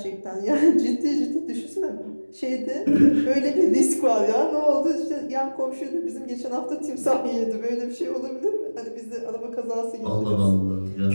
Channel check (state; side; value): inverted; both; correlation -1.00